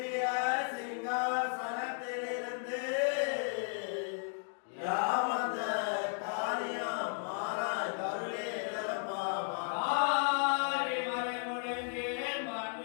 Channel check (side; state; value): right; silent; 55 dB below the other